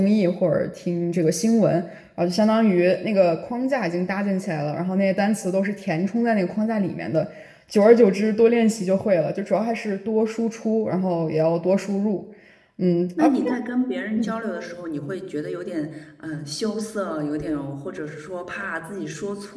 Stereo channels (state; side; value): identical; both; correlation 1.00